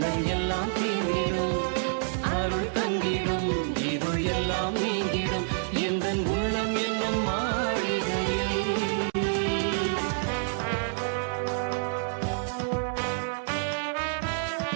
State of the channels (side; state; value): left; silent; 59 dB below the other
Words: எல்லாம் தீர்ந்திடும், அருள் தங்கிடும், இருள் எல்லாம் நீங்கிடும், எந்தன் உள்ளம் என்னும் மாளிகையில்.